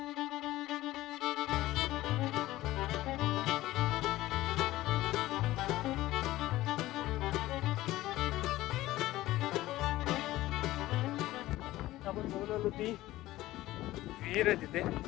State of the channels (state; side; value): quieter; right; 16.5 dB